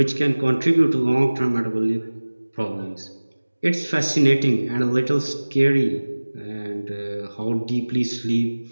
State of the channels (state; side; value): inverted; both; correlation -1.00